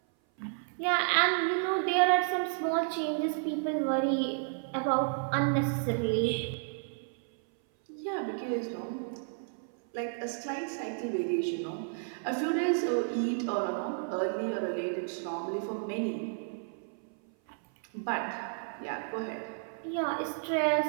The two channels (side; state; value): left; silent; 56 dB below the other